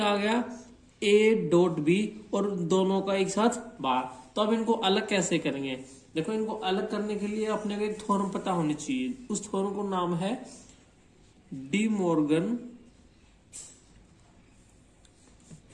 आ गया, ए डॉट बी और दोनों का एक साथ बार। तो अब इनको अलग कैसे करेंगे, देखो इनको अलग करने के लिए अपने को एक थ्योरम पता होनी चाहिए। उस थ्योरम को नाम है डी मॉर्गन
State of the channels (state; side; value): identical; both; correlation 1.00